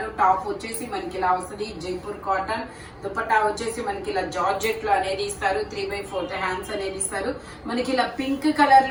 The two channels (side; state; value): both; identical; correlation 1.00